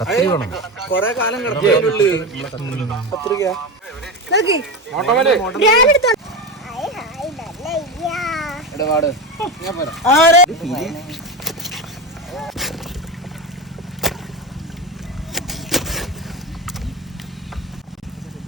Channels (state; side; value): normal; both; correlation 0.20